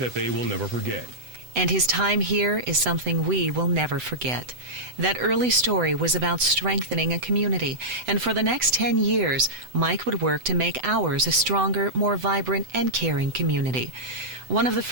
they will never forget. And his time here is something we will never forget. That early story was about strengthening a community, and for the next 10 years, Mike would work to make ours a stronger, more vibrant, and caring community. One of the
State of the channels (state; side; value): late; left; 7.9 ms